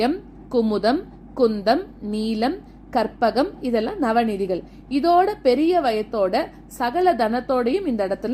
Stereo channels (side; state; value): both; identical; correlation 1.00